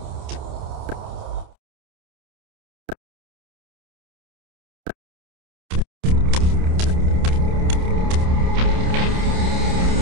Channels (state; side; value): late; left; 28 ms